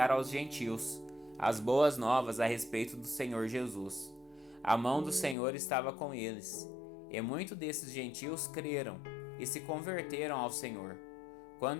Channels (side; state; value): right; drops out; at 5.4 s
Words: aos gentios as boas novas a respeito do Senhor Jesus. A mão do Senhor estava com eles, e muitos desses gentios creram e se converteram ao Senhor.